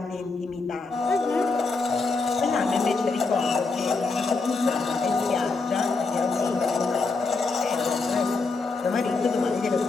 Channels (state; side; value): quieter; right; 4.0 dB